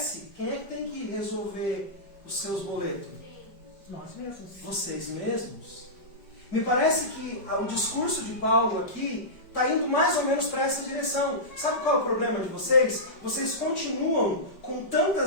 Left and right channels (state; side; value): late; right; 5.2 ms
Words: quem é que tem que resolver os seus boletos? Nós mesmos. Vocês mesmos. Me parece que o discurso de Paulo aqui está indo mais ou menos para essa direção. Sabe qual é o problema de vocês? Vocês continuam com